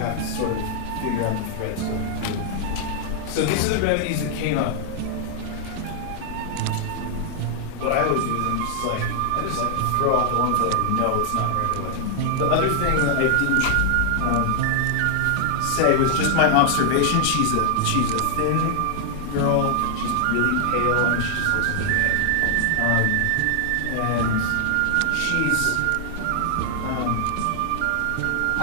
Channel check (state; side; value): different; both; correlation 0.00